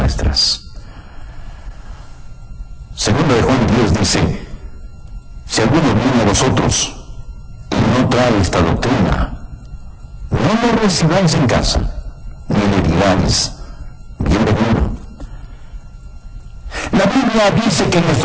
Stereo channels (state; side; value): identical; both; correlation 1.00